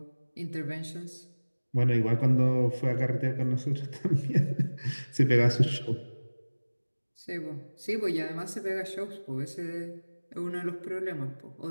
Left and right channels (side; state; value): both; inverted; correlation -1.00